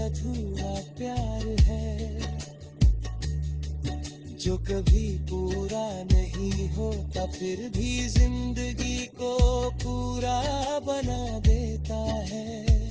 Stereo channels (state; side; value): identical; both; correlation 1.00